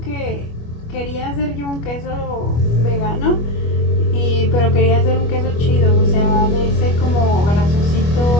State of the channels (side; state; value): right; late; 25 ms